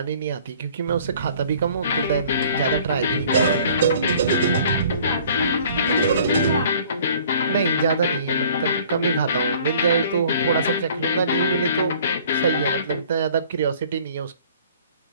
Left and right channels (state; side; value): inverted; both; correlation -0.53